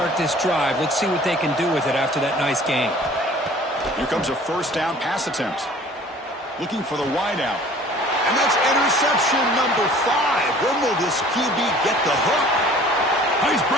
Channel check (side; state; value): both; normal; correlation 0.49